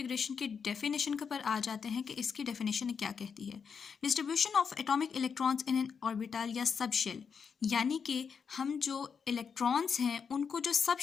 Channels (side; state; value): right; quieter; 6.3 dB